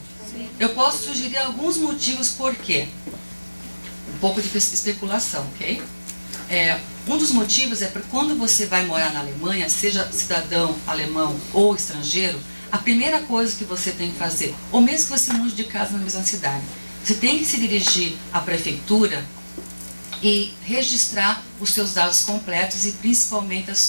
Sim. Eu posso sugerir alguns motivos por quê. Um pouco de especulação, ok? Um dos motivos é porque quando você vai morar na Alemanha, seja cidadão alemão ou estrangeiro, a primeira coisa que você tem que fazer, ou mesmo que você mude de casa na mesma cidade, você tem que se dirigir à prefeitura e registrar os seus dados completos e principalmente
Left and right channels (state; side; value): inverted; both; correlation -1.00